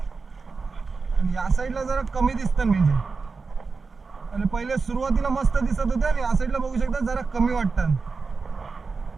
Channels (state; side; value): quieter; left; 4.5 dB